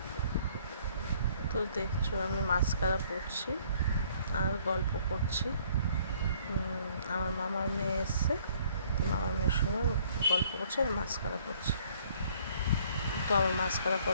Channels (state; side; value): inverted; both; correlation -0.60